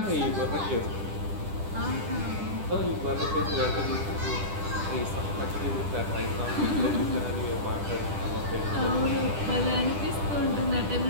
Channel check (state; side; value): late; left; 10 ms